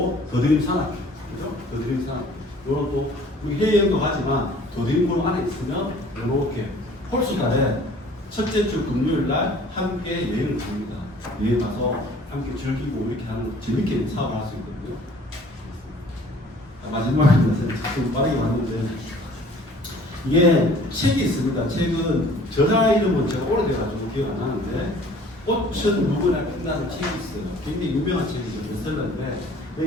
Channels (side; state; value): both; normal; correlation 0.52